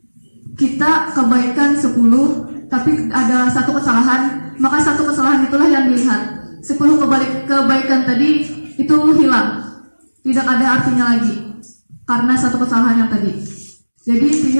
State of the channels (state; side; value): inverted; both; correlation -1.00